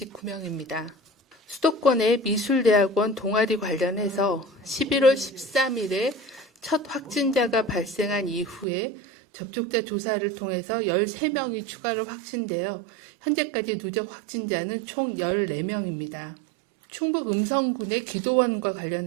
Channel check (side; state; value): left; drops out; at 8.7 s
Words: 수도권의 미술대학원 동아리 관련해서 11월 13일에 첫 확진자가 발생한 이후에 접촉자 조사를 통해서 13명이 추가로 확진되어 현재까지 누적 확진자는 총 14명입니다. 충북 음성군의 기도원과